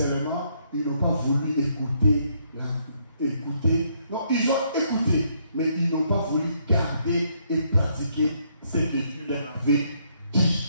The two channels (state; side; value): inverted; both; correlation -0.72